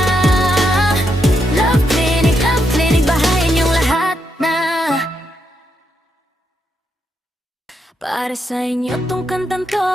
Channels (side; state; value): both; normal; correlation 0.81